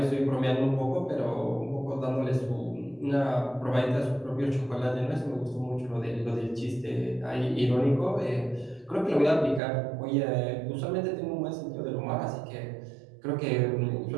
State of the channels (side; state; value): left; drops out; at 9.6 s